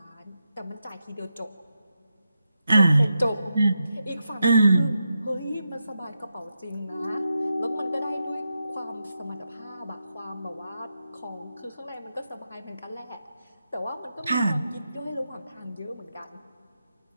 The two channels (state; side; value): inverted; both; correlation -0.87